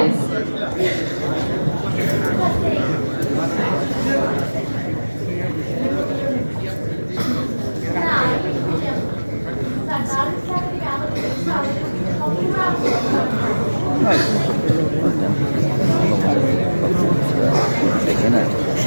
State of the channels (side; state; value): both; inverted; correlation -1.00